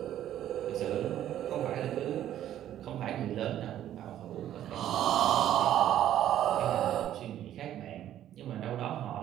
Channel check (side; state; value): left; quieter; 11.7 dB